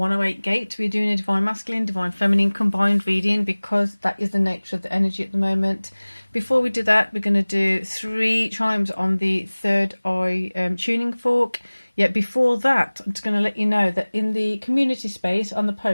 Gate. We're doing a Divine Masculine, Divine Feminine combined reading because that is the nature of the energy at the moment. Before we do that, we're going to do 3 chimes on the third eye tuning fork. Yet before that, I'm just going to let you know that in the community space on the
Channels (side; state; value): both; inverted; correlation -1.00